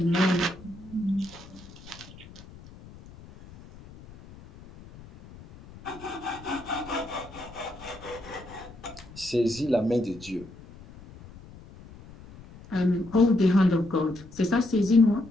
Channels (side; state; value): left; noise; rumble, 19 dB below the sound